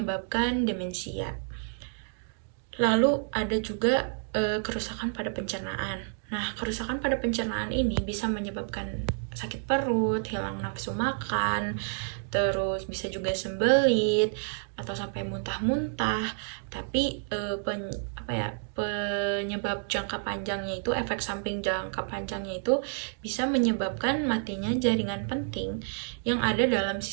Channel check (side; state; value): left; silent; digital silence